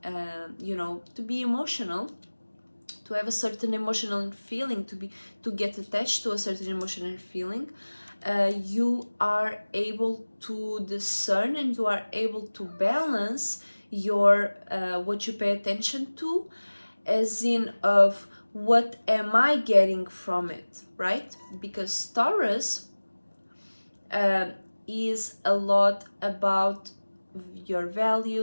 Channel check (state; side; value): inverted; both; correlation -1.00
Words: to be emotional, to have a certain emotional feeling, to get attached to a certain emotional feeling. You are able to discern, and you are able to balance your what you pay attention to, as in of what am I getting from it, right? Because Taurus is a lot about your